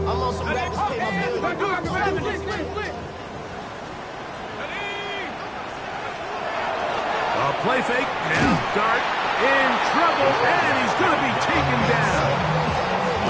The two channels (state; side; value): identical; both; correlation 1.00